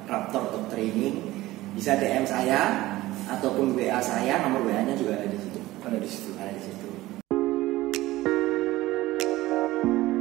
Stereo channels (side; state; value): left; quieter; 17.4 dB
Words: Raptor Dog Training, bisa DM saya ataupun WA saya, nomor WA-nya juga ada di situ. Ada di situ.